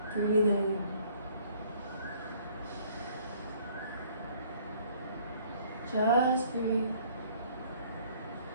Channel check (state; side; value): inverted; both; correlation -0.58